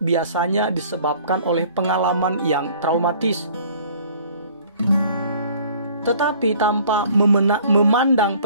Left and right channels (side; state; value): both; inverted; correlation -0.53